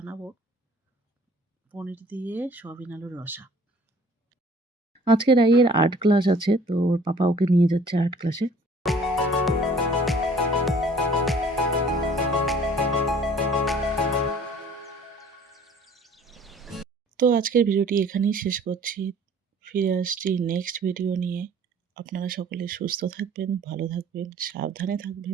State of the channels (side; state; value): both; normal; correlation 0.53